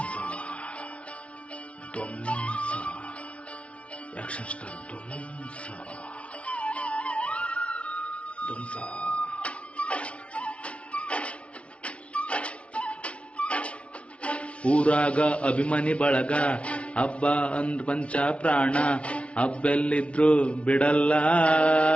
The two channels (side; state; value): right; late; 0.061 ms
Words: ಆಕ್ಷನ್ ಸ್ಟಾರ್ ಧ್ವಂಸ. ಊರಾಗ ಅಭಿಮಾನಿ ಬಳಗ, ಹಬ್ಬ ಅಂದ್ ಪಂಚ ಪ್ರಾಣ, ಹಬ್ಬೆಲ್ಲಿದ್ರು ಬಿಡಲ್ಲ,